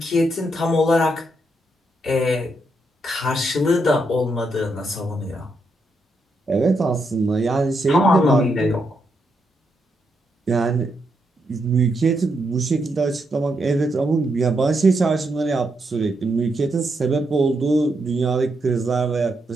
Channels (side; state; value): both; normal; correlation 0.80